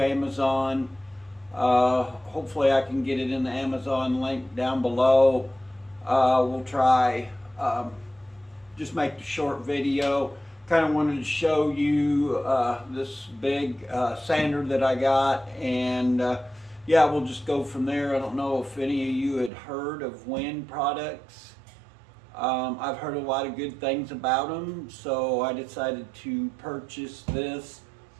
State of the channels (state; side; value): drops out; left; at 19.5 s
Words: Amazon. Hopefully I can get it in the Amazon link down below. We'll try just make the short video. Kind of wanted to show you this big sander that I got, and yeah, we'll just go from there. I don't know if any of you had heard of Win products. I've heard a lot of good things about them, so I decided to purchase this.